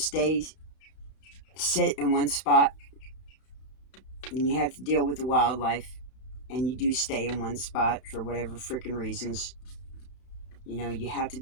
in one spot, and you have to deal with the wildlife, and you do stay in one spot for whatever freaking reasons, you have to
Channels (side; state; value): right; late; 31 ms